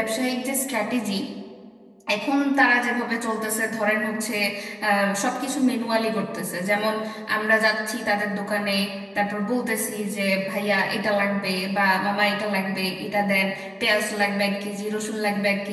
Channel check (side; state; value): both; identical; correlation 1.00